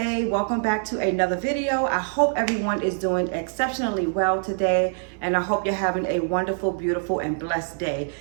Welcome back to another video. I hope everyone is doing exceptionally well today, and I hope you're having a wonderful, beautiful, and blessed day.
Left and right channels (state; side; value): silent; left; 62 dB below the other